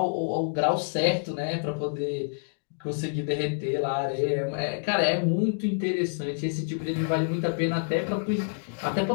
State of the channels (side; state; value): right; silent; digital silence